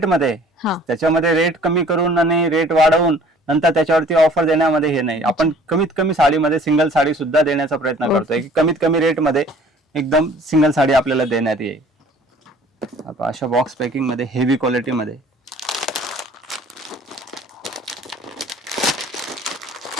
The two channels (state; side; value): normal; both; correlation 0.52